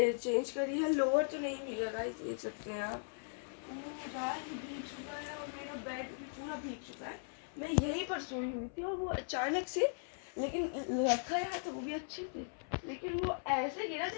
करी है। लोअर तो नहीं भीगा गाइस, देख सकते हैं आप, पूरा ही भीग चुका है और मेरा बेड भी पूरा भीग चुका है। मैं यहीं पर सोई हुई थी और वो अचानक से, लेकिन रखा यहाँ तो वो भी अच्छे से, लेकिन वो ऐसे गिरा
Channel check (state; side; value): silent; right; 52 dB below the other